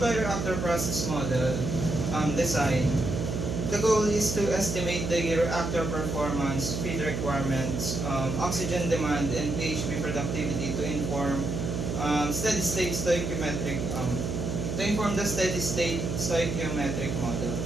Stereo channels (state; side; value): noise; right; hum, 3 dB below the sound